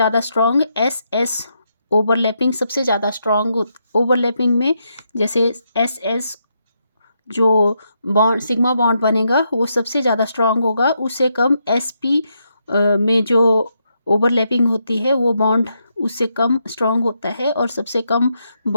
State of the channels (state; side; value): inverted; both; correlation -0.80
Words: स्ट्रॉन्ग एस एस ओवरलैपिंग सबसे ज़्यादा स्ट्रॉन्ग ओवरलैपिंग में, जैसे एस एस जो बॉन्ड सिग्मा बॉन्ड बनेगा वो सबसे ज़्यादा स्ट्रॉन्ग होगा, उससे कम एस पी में जो ओवरलैपिंग होती है वो बॉन्ड उससे कम स्ट्रॉन्ग होता है, और सबसे कम